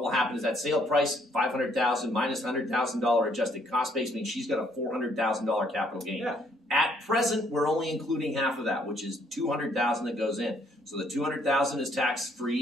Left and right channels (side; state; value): both; normal; correlation 0.67